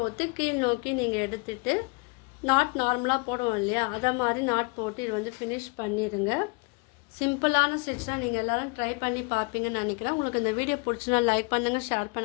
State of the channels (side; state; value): right; quieter; 31.2 dB